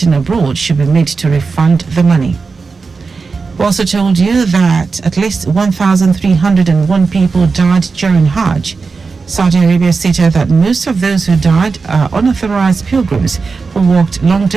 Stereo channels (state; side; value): quieter; left; 4.6 dB